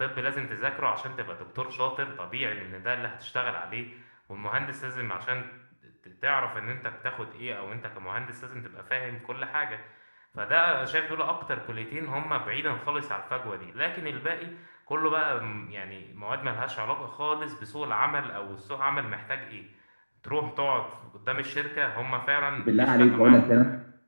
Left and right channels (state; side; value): inverted; both; correlation -1.00